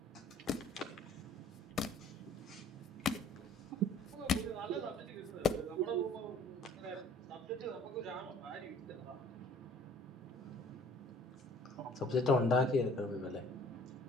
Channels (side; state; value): both; normal; correlation 0.53